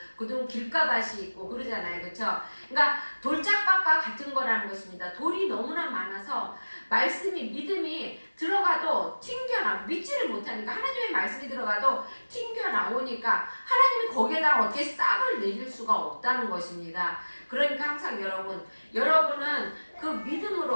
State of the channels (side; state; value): both; inverted; correlation -1.00